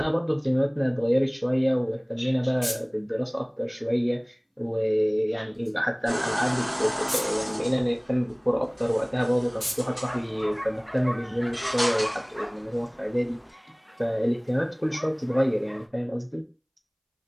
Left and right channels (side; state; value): both; identical; correlation 1.00